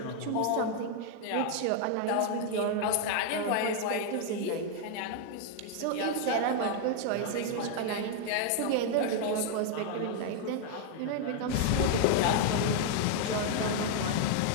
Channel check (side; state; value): both; different; correlation 0.00